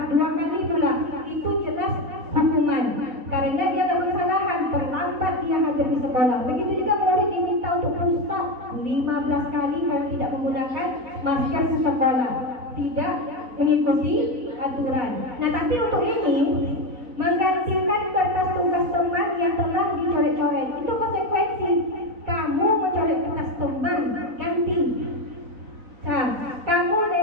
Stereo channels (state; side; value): late; left; 4.0 ms